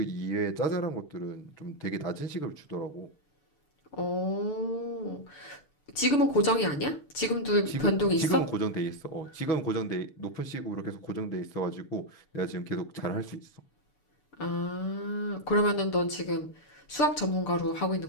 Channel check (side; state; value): right; late; 6.8 ms